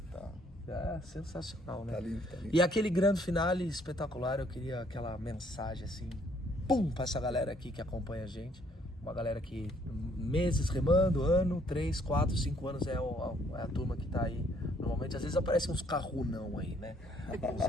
É sensacional, né? Tá lindo, tá lindo. E aquele grande finale espetacular, eu queria aquela mensagem assim, pra essa galera aqui que acompanha a gente. Uma galera que meses remando, 3, 4, 5 anos é a turma que tá aí. Normalmente, às vezes aparecem uns carrunão aí, né? Uns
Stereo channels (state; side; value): normal; both; correlation 0.66